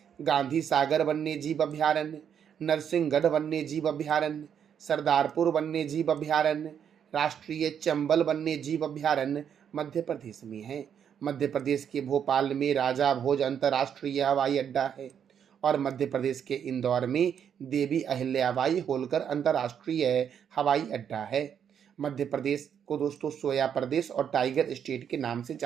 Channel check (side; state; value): left; quieter; 8.3 dB